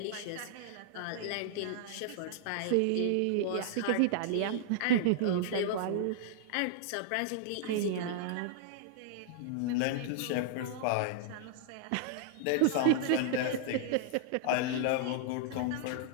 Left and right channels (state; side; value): different; both; correlation -0.01